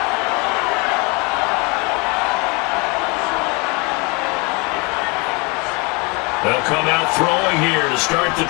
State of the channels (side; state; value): right; quieter; 29.3 dB